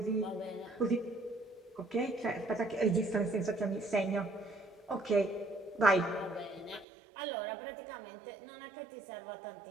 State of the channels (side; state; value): left; drops out; at 6.9 s